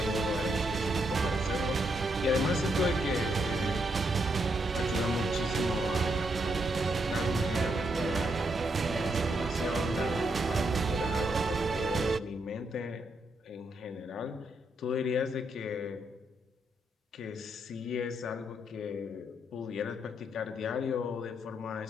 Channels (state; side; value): normal; both; correlation 0.78